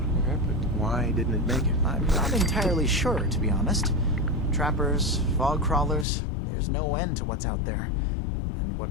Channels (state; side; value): drops out; right; at 6.1 s